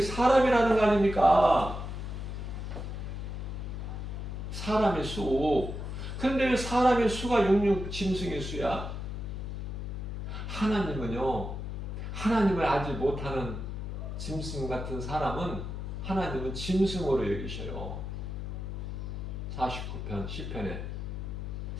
사람이라는 거 아닙니까? 사람의 수. 그런데 왜 사람의 수가 66 짐승의 수야? 하나님은요, 하나님을 알지 못하는 짐승 같은 사람은 하나님은 짐승으로 여기셔요. 49편 10편에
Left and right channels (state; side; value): noise; left; hum, 5 dB below the sound